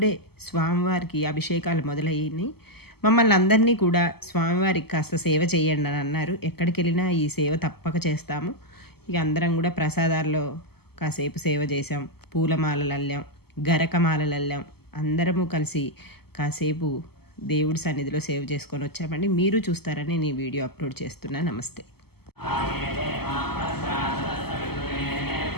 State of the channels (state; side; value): late; right; 0.96 ms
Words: స్వామివారికి అభిషేకాలు మొదలయ్యాయి. మమ్మల్ని అందరినీ కూడా స్వామివారికి కాస్త సేవ చేయండి అని అన్నారు. ఎక్కడికి వెళ్ళినా ఈ సేవ తప్పక చేస్తాము. ఇక అందరం కూడా ప్రసాదాల్లో కాసేపు సేవ చేసాం, పూలమాలలు అల్లాం, గరకమాలలు అల్లాం. అందరము కలిసి కాసేపు దేవుడి సన్నిధిలో సేవ చేసుకొని వచ్చామండి. మీరు చూస్తారని నేను వీడియో అప్లోడ్ చేస్తున్నా. నమస్తే.